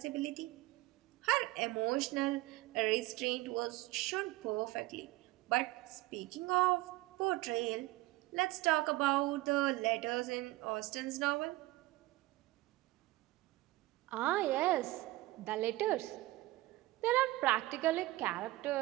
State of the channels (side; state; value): left; quieter; 19.0 dB